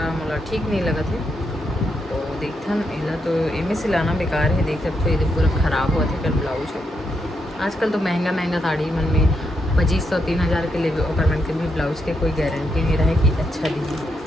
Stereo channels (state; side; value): normal; both; correlation 0.81